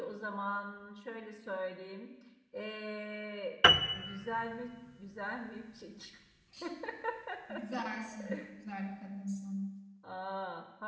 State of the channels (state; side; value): identical; both; correlation 1.00